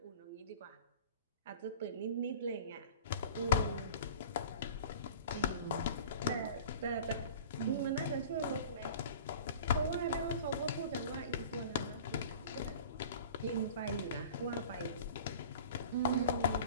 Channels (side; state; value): both; inverted; correlation -0.42